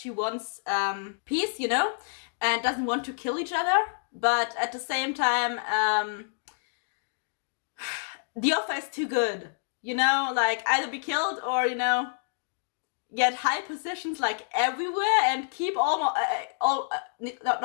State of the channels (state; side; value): silent; right; digital silence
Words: wants peace, you know, and doesn't want to kill each other. But at the same time, the offer is too good, you know, like either be killed or, you know, get high positions like everywhere and keep